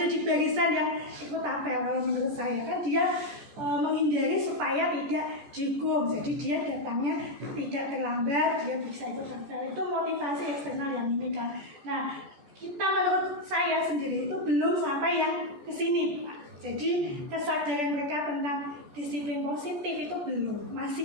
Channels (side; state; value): left; late; 14 ms